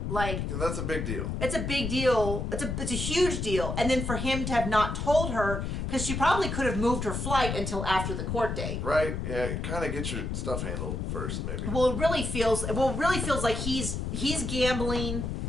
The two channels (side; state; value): left; noise; rumble, 3 dB below the sound